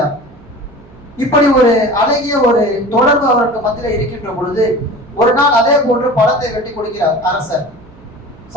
இப்படி ஒரு அழகிய ஒரு தொடர்பு அவருக்கு மத்தியில் இருக்கின்ற பொழுது ஒரு நாள் அதே போன்று பழத்தை வெட்டி கொடுக்கிறார் அரசர்.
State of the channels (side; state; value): right; noise; hum, 24 dB below the sound